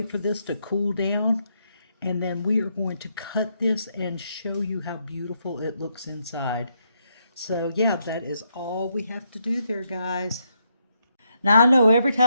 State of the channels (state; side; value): inverted; both; correlation -0.78